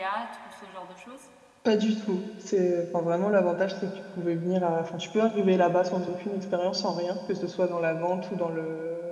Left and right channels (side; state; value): both; identical; correlation 1.00